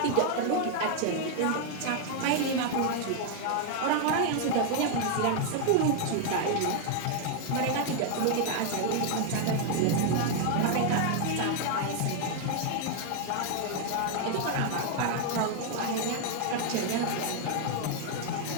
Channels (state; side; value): different; both; correlation 0.00